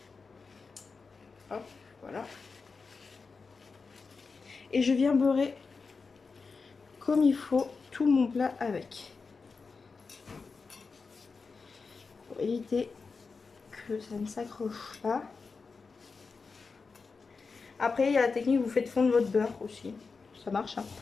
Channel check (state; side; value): quieter; right; 4.6 dB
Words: Hop, voilà. Et je viens beurrer comme il faut tout mon plat avec. Pour éviter que ça ne s'accroche pas. Après, il y a la technique, vous faites fondre votre beurre aussi. Ça marche, hein,